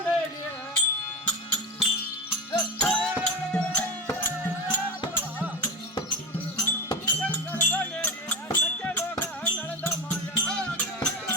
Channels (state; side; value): normal; both; correlation 0.23